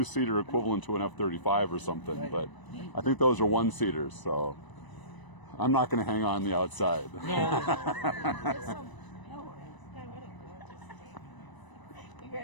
equivalent to an F-35 or something. Right. But I think those are 1-seaters, so I'm not going to hang on the outside.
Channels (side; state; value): right; late; 1.0 ms